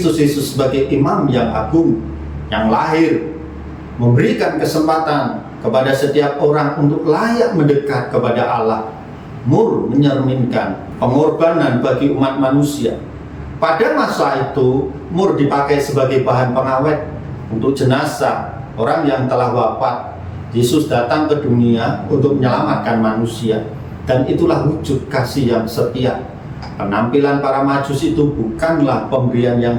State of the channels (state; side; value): identical; both; correlation 1.00